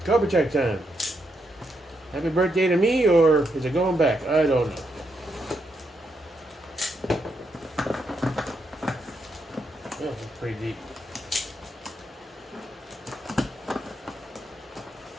Cobra check time. Happy birthday to me, or is it going back? I don't know. Oh, it's pretty deep.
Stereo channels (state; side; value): normal; both; correlation 0.80